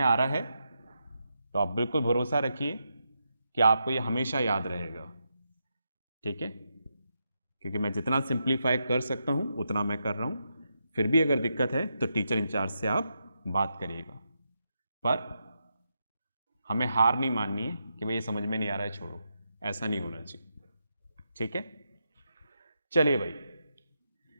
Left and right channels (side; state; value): both; inverted; correlation -0.84